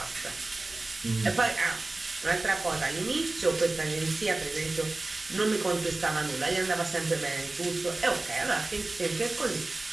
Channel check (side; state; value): left; quieter; 3.0 dB